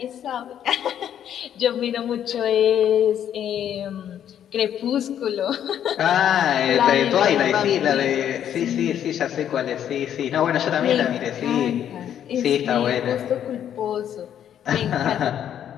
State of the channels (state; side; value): quieter; right; 9.9 dB